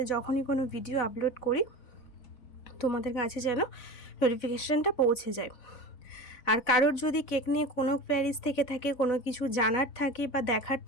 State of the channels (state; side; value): late; right; 4.0 ms